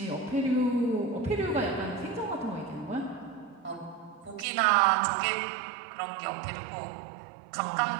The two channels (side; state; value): left; drops out; at 4.5 s